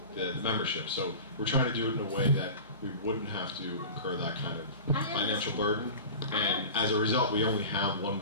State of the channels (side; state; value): both; inverted; correlation -0.34